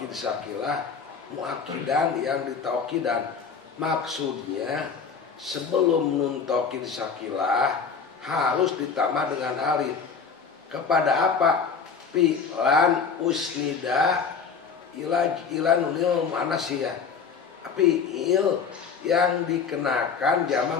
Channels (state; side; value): quieter; right; 5.8 dB